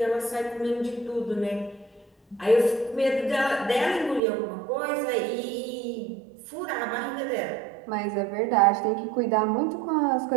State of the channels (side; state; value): left; drops out; at 4.2 s